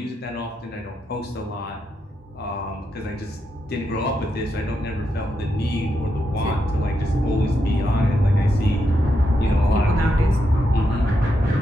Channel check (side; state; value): both; normal; correlation 0.83